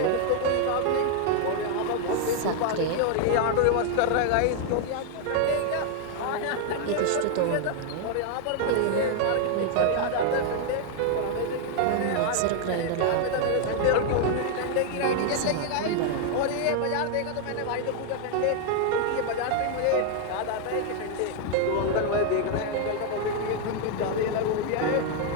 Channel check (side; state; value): both; different; correlation 0.00